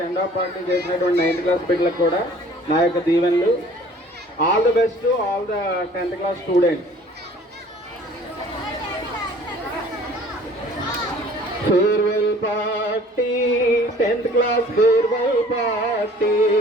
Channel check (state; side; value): normal; both; correlation 0.51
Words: ఆఫ్ పార్టీ చేసినటువంటి 9th క్లాస్ బిడ్డలకు కూడా నా యొక్క దీవెనలు. All the best to all the 10th class students. Farewell party, 10th class farewell party.